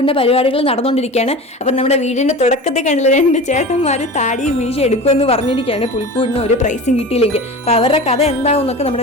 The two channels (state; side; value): normal; both; correlation 0.33